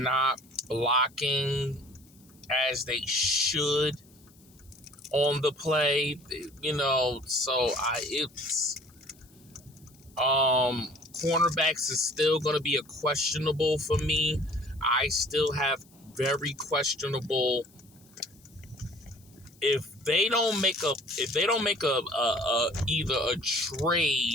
blocking as they should on the play, cornerbacks is still going to be a questionable for me. I still have very questionable. If they don't make either a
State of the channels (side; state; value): left; noise; hiss, 28 dB below the sound